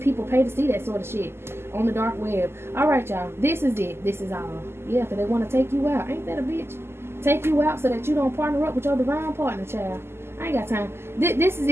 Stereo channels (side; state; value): left; late; 0.12 ms